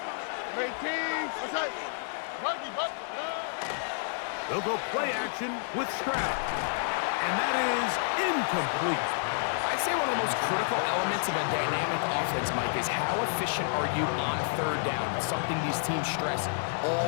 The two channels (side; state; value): right; silent; 58 dB below the other